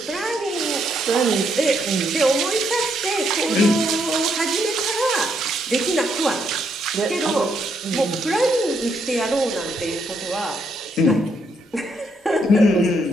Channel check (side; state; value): both; normal; correlation 0.75